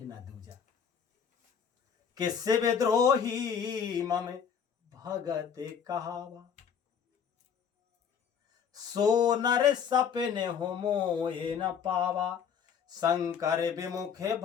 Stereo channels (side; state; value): right; quieter; 7.3 dB